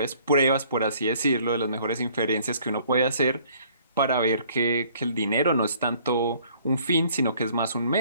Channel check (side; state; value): both; inverted; correlation -0.58